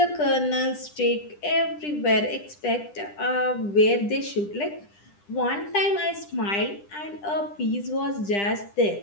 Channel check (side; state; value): right; late; 10 ms